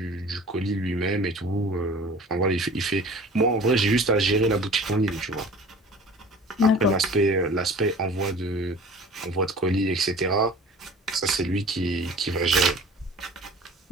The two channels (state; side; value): normal; both; correlation 0.44